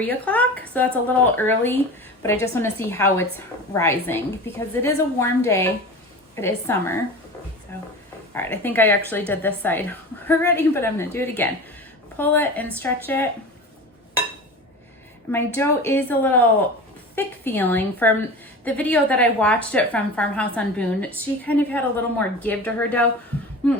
o'clock. So that's a little early, but I just wanna see how it's rising because it is a warm day. It is summer. So, all right, I think I actually did this side already, but I'm gonna do it again. Pull it and stretch it. My dough is a little thick feeling. From the video that I watched it from Farmhouse on Boone, she kind of had a little more give to her dough,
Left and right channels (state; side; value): normal; both; correlation 0.33